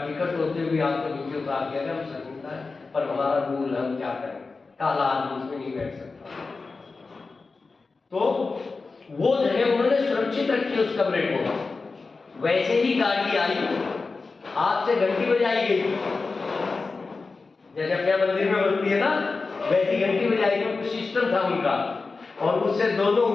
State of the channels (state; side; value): quieter; right; 4.1 dB